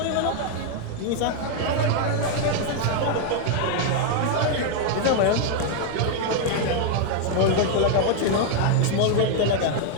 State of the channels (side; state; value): both; different; correlation 0.00